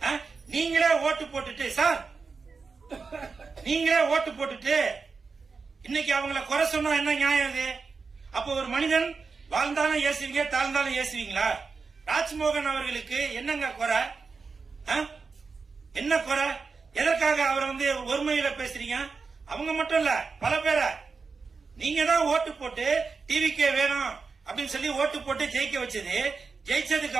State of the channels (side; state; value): left; quieter; 4.7 dB